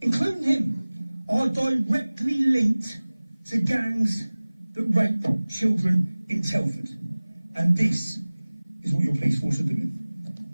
including him, are directly linked to gangs that rape children in Telford. And this is what your police force are doing.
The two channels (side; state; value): both; inverted; correlation -0.99